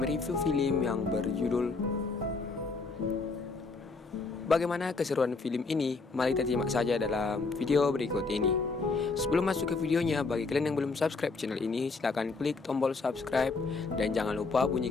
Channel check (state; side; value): quieter; right; 4.0 dB